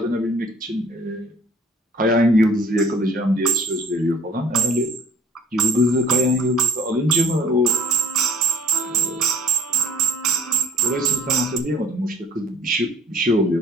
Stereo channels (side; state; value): both; normal; correlation 0.57